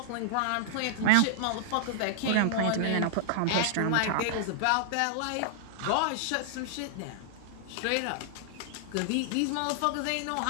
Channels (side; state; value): both; different; correlation -0.01